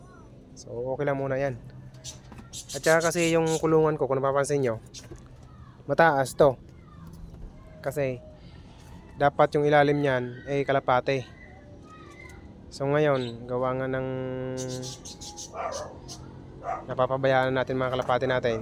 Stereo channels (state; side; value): identical; both; correlation 1.00